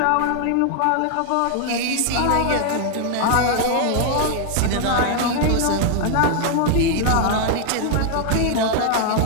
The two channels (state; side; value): different; both; correlation 0.00